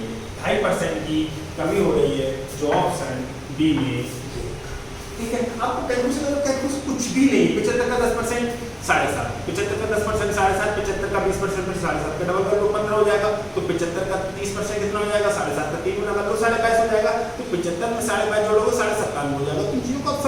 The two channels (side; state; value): both; identical; correlation 1.00